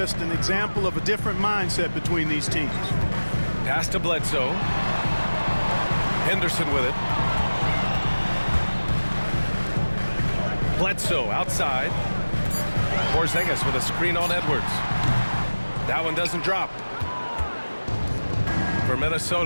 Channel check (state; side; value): inverted; both; correlation -1.00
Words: an example of a different mindset between these teams. Pass to Bledsoe. Henderson with it. Bledsoe outside. Porzingis with a screen on Edwards. That one doesn't drop. For